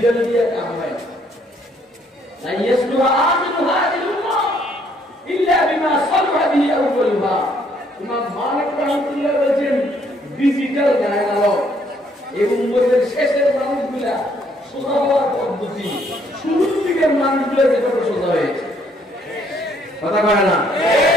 দিয়ে কাম হয় لا يصلح آخر هذه الأمة إلا بما صلح به أولها। ইমাম মালিক রাহমাতুল্লাহ বলেছেন ডিজিটাল জ্ঞান আলো এই উম্মতের শেষের মানুষগুলা সোজা হওয়ার পদ্ধতি শুরুর দিকের মানুষগুলা যেভাবে সোজা হয়েছে কথা কয় না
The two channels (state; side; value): normal; both; correlation 0.67